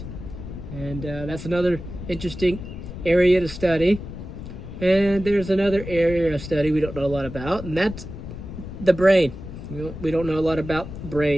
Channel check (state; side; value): noise; left; rumble, 10 dB below the sound